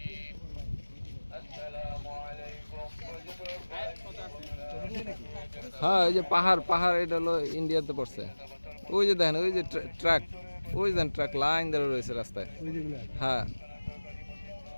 হ্যাঁ ওই যে পাহাড় পাহাড়, এটা হলো ইন্ডিয়াতে পড়ছে। ওই যে দেখেন ওই যে ট্রাক, ওই যে ট্রাক লাইন ধরে রয়েছে রাস্তায়। হ্যাঁ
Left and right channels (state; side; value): inverted; both; correlation -1.00